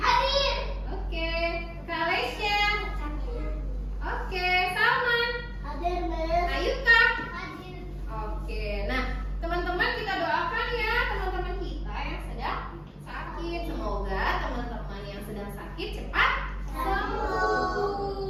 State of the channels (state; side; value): identical; both; correlation 1.00